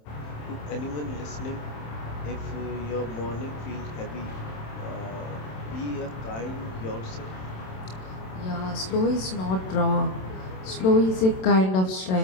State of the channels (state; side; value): late; right; 27 ms